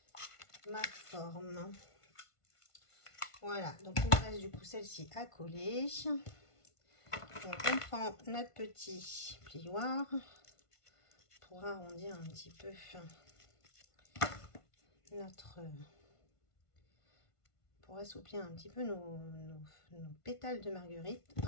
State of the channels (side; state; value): right; late; 1.5 ms